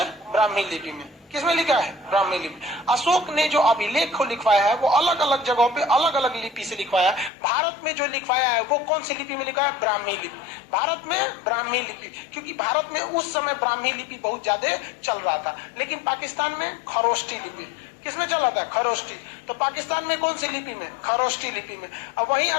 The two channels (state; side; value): drops out; right; at 7.3 s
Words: ब्राह्मी लिपि में। किसमें लिखा है? ब्राह्मी लिपि। अशोक ने जो अभिलेख को लिखवाया है वो अलग अलग जगहों पे अलग अलग लिपि से लिखवाया है। भारत में जो लिखवाया है वो कौन सी लिपि में लिखा है? ब्राह्मी लिपि। भारत में ब्राह्मी लिपि, क्योंकि भारत में उस समय ब्राह्मी लिपि बहुत ज्यादा चल रहा था। लेकिन पाकिस्तान में खरोष्टी लिपि। किसमें चल रहा था? खरोष्टी। तो पाकिस्तान में कौन सी लिपि में? खरोष्टी लिपि में। अब वहीं